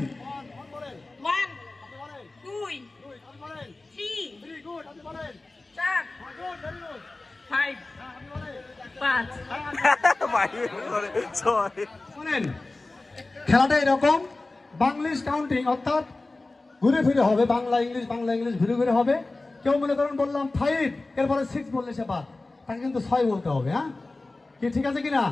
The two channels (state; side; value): quieter; right; 3.2 dB